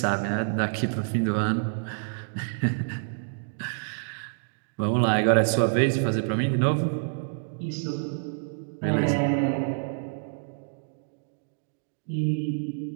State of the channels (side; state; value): left; silent; digital silence